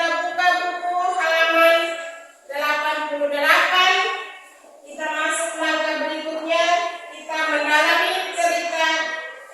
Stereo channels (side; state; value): both; identical; correlation 1.00